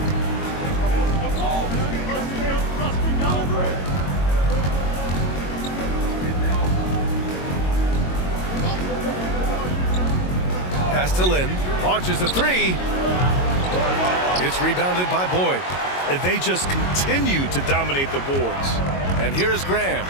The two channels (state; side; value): late; right; 22 ms